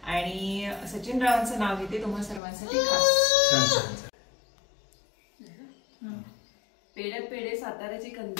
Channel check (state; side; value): drops out; right; at 2.4 s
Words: आणि सचिन रावांचं नाव घेते तुम्हा सर्वांसाठी खास. पेड्यात पेढे साताऱ्याची